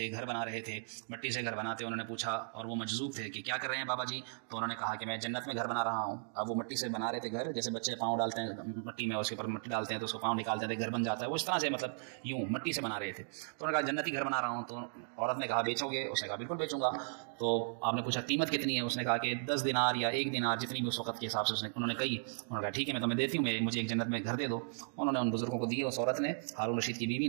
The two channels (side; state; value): left; silent; digital silence